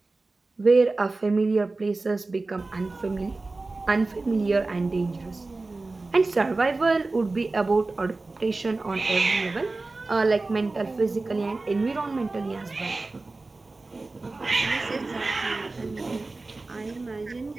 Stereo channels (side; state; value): left; quieter; 3.4 dB